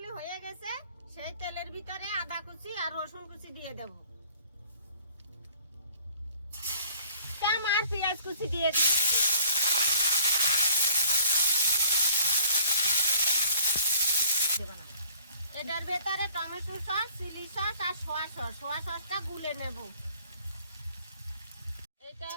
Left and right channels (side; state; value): both; inverted; correlation -0.54